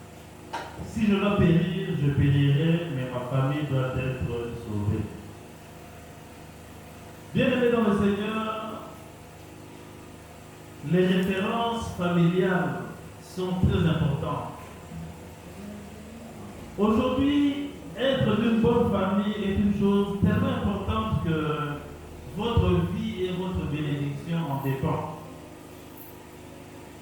si je dois périr, je périrai, mais ma famille doit être sauvée. Bien-aimés dans le Seigneur, les références familiales sont très importantes. Aujourd'hui, être d'une bonne famille est une chose tellement importante que votre vie et votre bénédiction en dépendent.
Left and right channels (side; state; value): both; identical; correlation 1.00